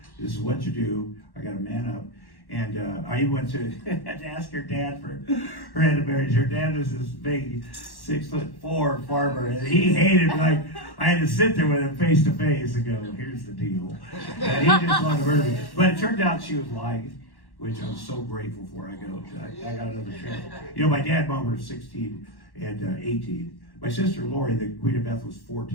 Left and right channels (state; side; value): late; right; 1.1 ms